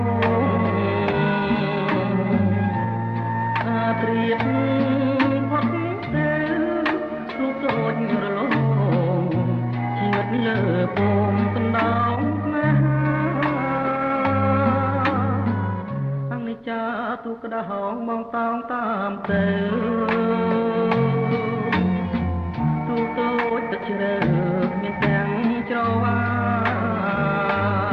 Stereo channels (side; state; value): both; identical; correlation 1.00